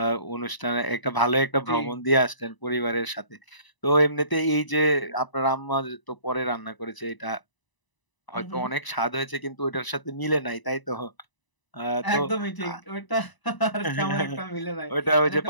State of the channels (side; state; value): right; late; 1.0 ms